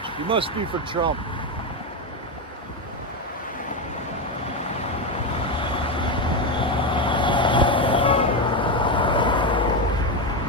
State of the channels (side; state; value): both; normal; correlation 0.11